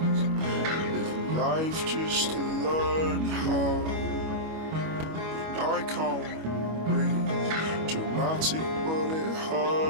living life just to learn how. And I can't breathe, dramatic but it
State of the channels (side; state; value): left; late; 25 ms